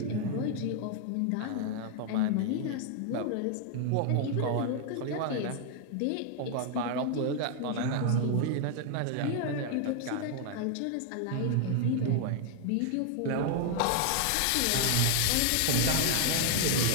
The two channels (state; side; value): different; both; correlation 0.00